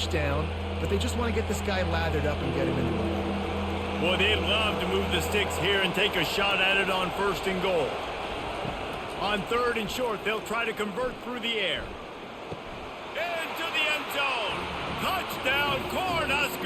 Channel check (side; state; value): both; identical; correlation 1.00